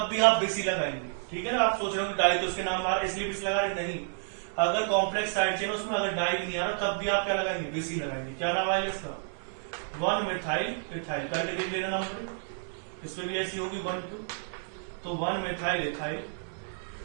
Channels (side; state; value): left; silent; digital silence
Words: भी आप बिस ही लगाएंगे, ठीक है ना। आप सोच रहे हो कि डाई तो उसके नाम आ रहा है इसलिए बिस लगा रहे, नहीं। अगर कॉम्प्लेक्स साइड चेन उसमें अगर डाई भी नहीं आ रहा तब भी आप क्या लगाएंगे? बिस ही लगाएंगे। क्या नाम आएगा इसका? 1 मिथाइल इथाइल करके देख लेना नंबर। इसमें भी ऐसी होगी 1 2, तो 1 मिथाइल इथाइल।